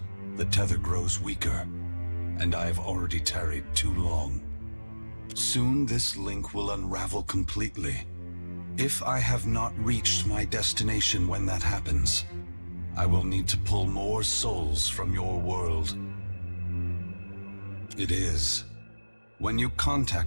the tether grows weaker, and I have already tarried too long. Soon this link will unravel completely. If I have not reached my destination when that happens, I will need to pull more souls from your world. It is. When you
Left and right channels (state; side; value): inverted; both; correlation -1.00